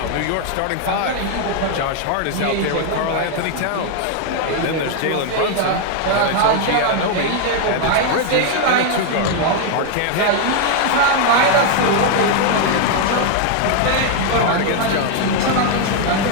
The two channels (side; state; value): both; different; correlation 0.00